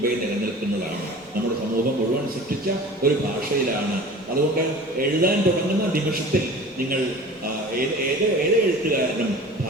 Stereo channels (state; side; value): normal; both; correlation 0.40